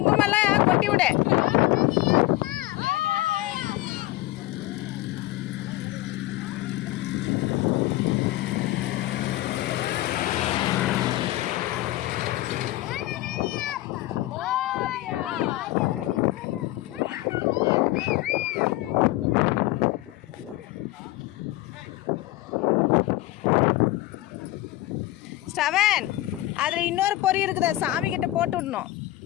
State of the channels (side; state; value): right; quieter; 17.2 dB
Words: கொட்டி விடு. ஸ்டவன் அதில் இன்னொரு பொரி இருக்குது, சாமி கிட்ட போட்டு விடணும்.